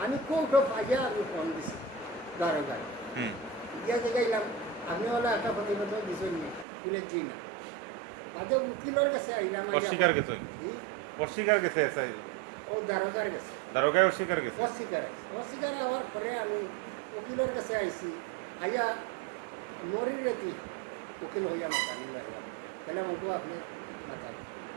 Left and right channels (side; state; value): left; drops out; at 6.7 s